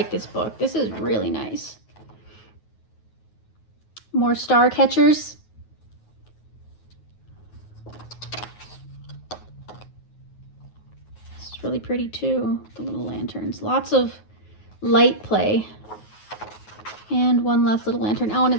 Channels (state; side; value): late; right; 9.4 ms